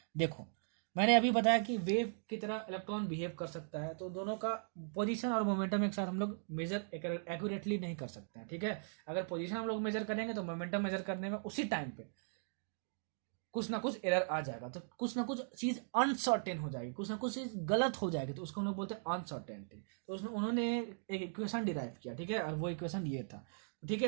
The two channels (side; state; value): left; silent; digital silence